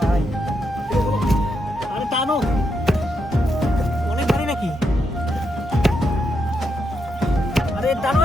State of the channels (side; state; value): both; normal; correlation 0.81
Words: আরে টানো, অনেক ভারী নাকি? আরে টানো,